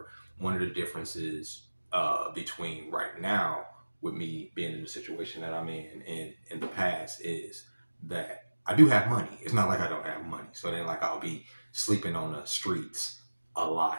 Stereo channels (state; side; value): inverted; both; correlation -1.00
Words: One of the differences between right now with me being in the situation that I'm in and in the past is that I do have money. It's not like I don't have money. So then like I'll be sleeping on the streets a lot.